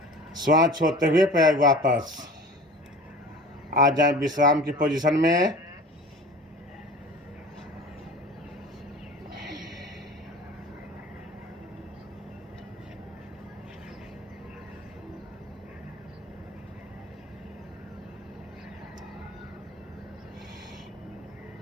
श्वास छोड़ते हुए पैर वापस। आ जाए विश्राम की पोजीशन में।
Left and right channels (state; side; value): normal; both; correlation 0.40